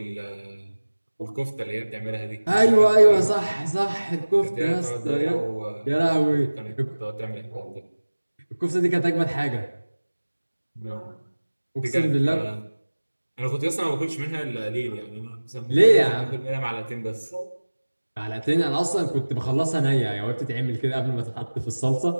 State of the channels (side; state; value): both; inverted; correlation -1.00